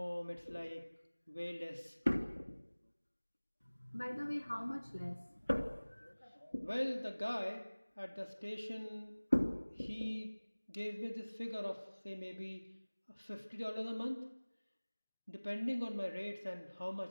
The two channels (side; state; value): both; inverted; correlation -1.00